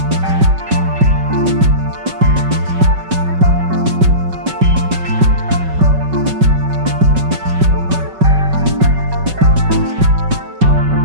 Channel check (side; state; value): left; late; 5.3 ms